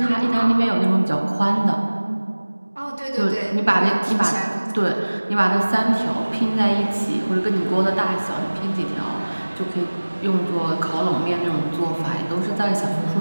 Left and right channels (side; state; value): both; inverted; correlation -1.00